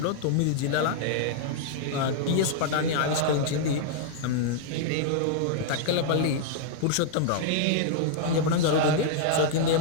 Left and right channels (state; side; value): different; both; correlation -0.01